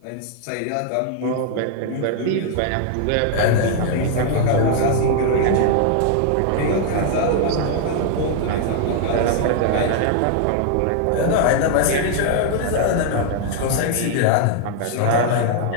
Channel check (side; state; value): both; different; correlation 0.00